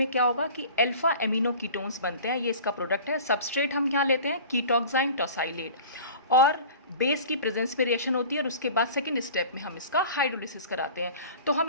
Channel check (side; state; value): both; inverted; correlation -0.41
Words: क्या होगा कि अल्फा एमिनो कीटोन्स बनते हैं, ये इसका प्रोडक्ट है। सबस्ट्रेट हम क्या लेते हैं, कीटोक्साइन टोसाइलेट, और बेस की प्रेजेंस में रिएक्शन होती है और उसके बाद सेकंड स्टेप में हम इसका हाइड्रोलिसिस कराते हैं। तो हम